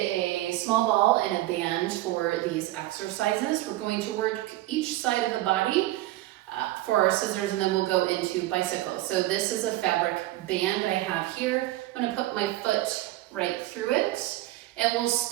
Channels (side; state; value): left; quieter; 16.8 dB